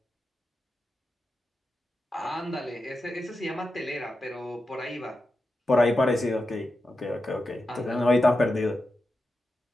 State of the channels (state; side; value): normal; both; correlation 0.90